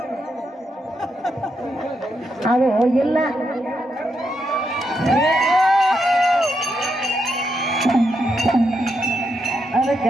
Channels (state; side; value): normal; both; correlation 0.82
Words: ಅದು ಇಲ್ಲ. ಅದಕ್ಕ